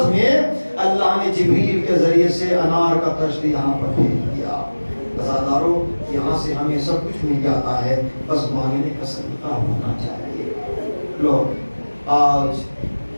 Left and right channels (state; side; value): inverted; both; correlation -1.00